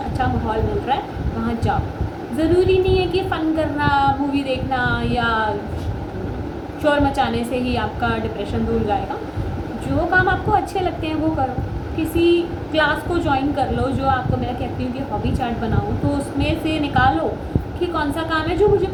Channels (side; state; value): both; identical; correlation 1.00